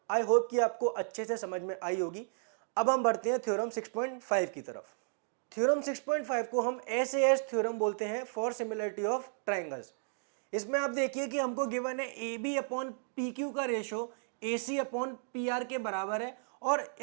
आई होप कि आपको अच्छे से समझ में आई होगी। अब हम बढ़ते हैं थ्योरम 6.5 की तरफ। थ्योरम 6.5 को हम SAS थ्योरम बोलते हैं फॉर सिमिलरिटी ऑफ ट्रायंगल्स। इसमें आप देखिए कि हमको गिवन है AB अपॉन PQ का रेशो AC अपॉन PR के बराबर है, और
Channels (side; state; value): left; silent; digital silence